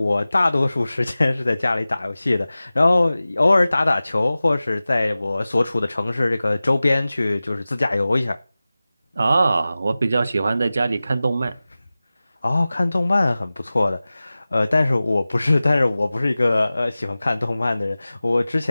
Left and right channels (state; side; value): inverted; both; correlation -0.97